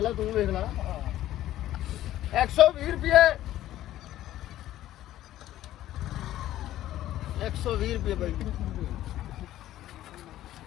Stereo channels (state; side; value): quieter; right; 13.6 dB